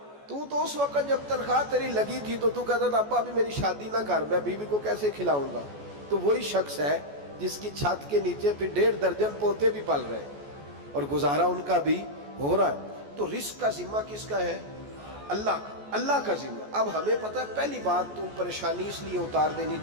تو اس وقت جب تنخواہ تیری لگی تھی تو کہتا تھا ابا ابھی میری شادی نہ کر، میں بیوی کو کیسے کھلاؤں گا؟ تو وہی شخص ہے جس کی چھت کے نیچے پھر 1.5 درجن پوتے بھی پل رہے اور گزارا ان کا بھی ہو رہا ہے۔ تو رزق کا ذمہ کس کا ہے؟ اللہ کا، اللہ کا ذمہ۔ اب ہمیں پتہ ہے پہلی بات تو پریشانی اس لیے اتار دینی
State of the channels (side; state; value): left; late; 14 ms